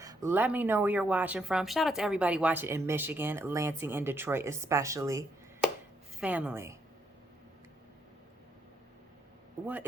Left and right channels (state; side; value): normal; both; correlation 0.76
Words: Let me know where you're watching from. Shout out to everybody watching in Michigan, Lansing, and Detroit especially. Family, what